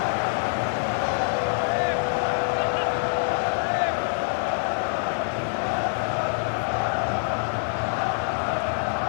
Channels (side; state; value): right; silent; 61 dB below the other